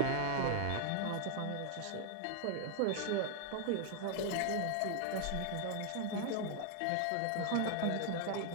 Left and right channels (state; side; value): different; both; correlation 0.00